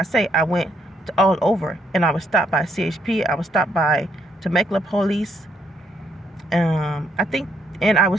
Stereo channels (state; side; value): normal; both; correlation 0.74